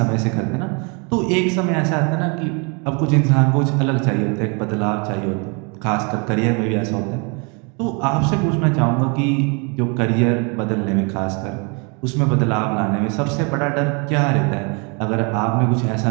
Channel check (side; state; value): left; quieter; 33.1 dB